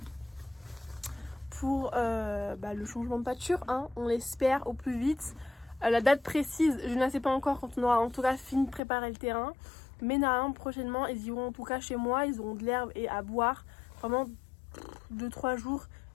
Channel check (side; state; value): right; drops out; at 8.8 s